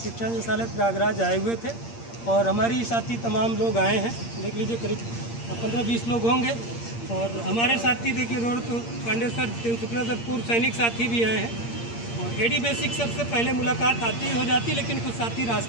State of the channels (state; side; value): late; right; 8.6 ms